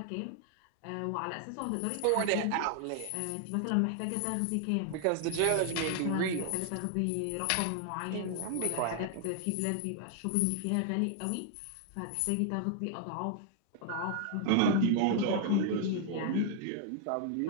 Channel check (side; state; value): both; different; correlation 0.00